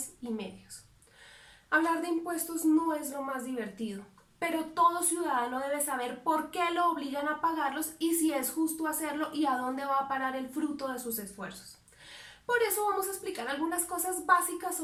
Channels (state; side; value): identical; both; correlation 1.00